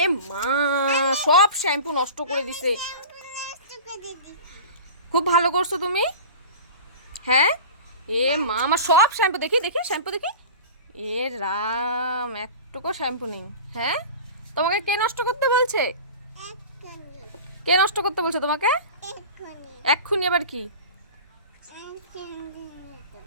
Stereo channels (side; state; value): both; inverted; correlation -0.35